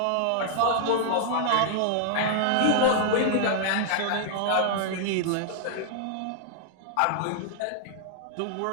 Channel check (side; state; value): both; different; correlation -0.01